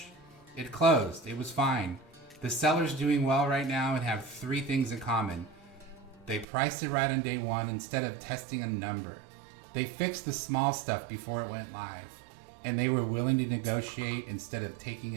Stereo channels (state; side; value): drops out; left; at 6.5 s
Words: It closed. It was fine. The seller's doing well right now and have three things in common. They priced it right on day one instead of testing a number. They fixed the small stuff before it went live. And they were willing to negotiate instead of taking